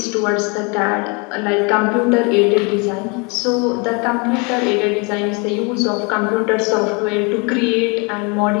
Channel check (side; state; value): right; quieter; 30.8 dB